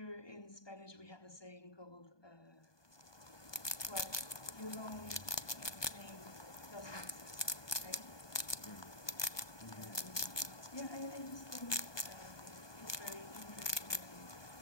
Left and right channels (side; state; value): right; late; 1.2 ms